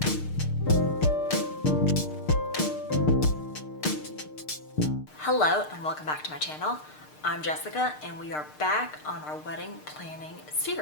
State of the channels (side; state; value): right; late; 6.6 ms